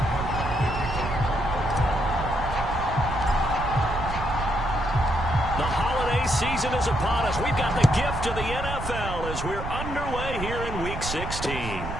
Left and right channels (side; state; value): right; noise; rumble, 7 dB below the sound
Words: The holiday season is upon us. We've got the gift of the NFL as we're underway here in Week 16.